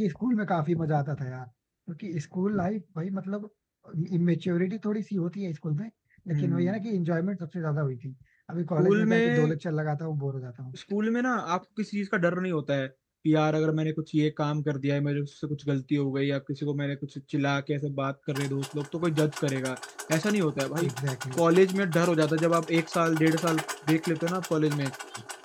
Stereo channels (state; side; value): identical; both; correlation 1.00